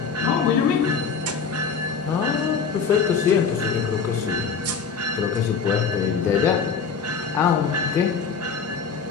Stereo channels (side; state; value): right; quieter; 5.8 dB